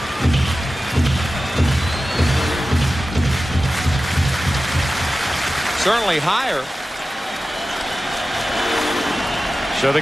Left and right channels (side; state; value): both; normal; correlation 0.94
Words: Certainly higher. So the